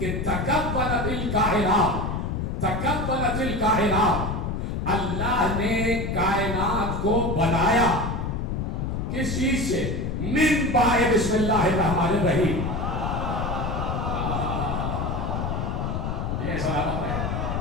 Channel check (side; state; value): left; noise; rumble, 2 dB below the sound